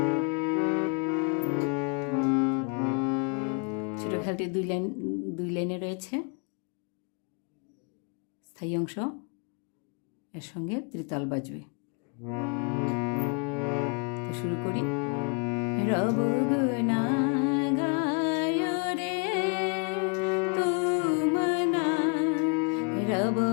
ছোট খেয়ালটি দুই লাইনে রয়েছে। স্থায়ী অংশ এর সঙ্গে ত্রিতাল বাজবে। তো শুরু করি। রব গুনা গায় রে তুমনা, রব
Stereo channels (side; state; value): right; quieter; 37.3 dB